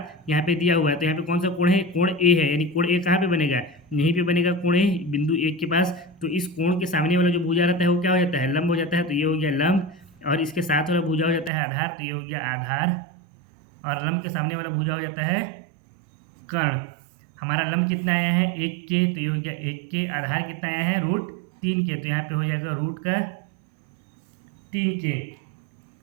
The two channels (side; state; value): left; drops out; at 11.5 s